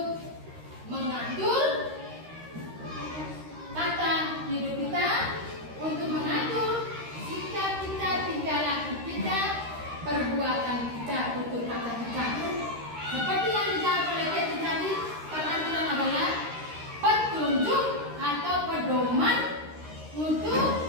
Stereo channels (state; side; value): late; left; 13 ms